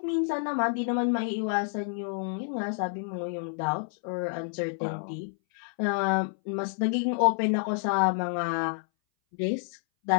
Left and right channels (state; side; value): silent; right; 59 dB below the other